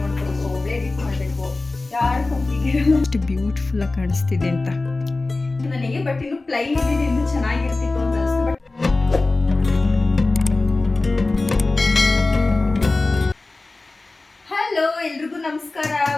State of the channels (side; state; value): right; quieter; 3.3 dB